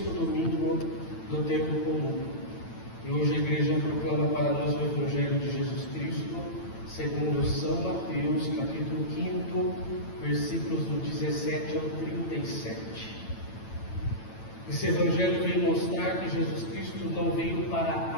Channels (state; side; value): late; right; 9.0 ms